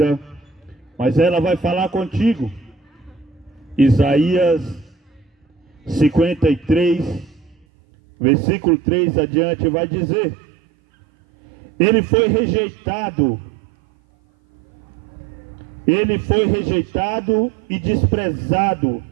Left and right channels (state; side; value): drops out; left; at 7.7 s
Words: mas ela vai falar contigo. Isaías 53, versículo 3 adiante vai dizer: Ele foi rejeitado e desprezado